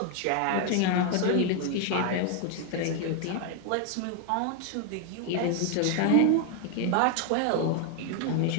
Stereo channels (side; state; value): both; different; correlation 0.01